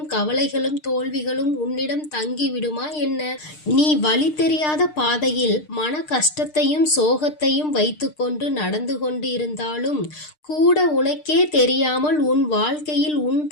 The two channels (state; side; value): late; right; 6.6 ms